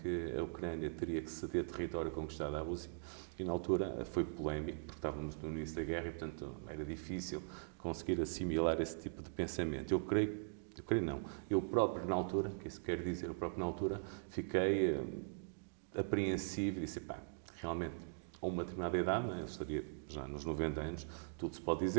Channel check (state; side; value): silent; left; digital silence